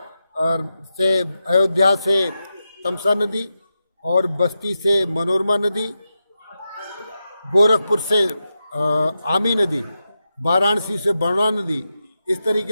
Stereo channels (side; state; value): both; inverted; correlation -0.89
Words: से अयोध्या से तमसा नदी, और बस्ती से मनोरमा नदी, गोरखपुर से आमी नदी, वाराणसी से बरना नदी। इस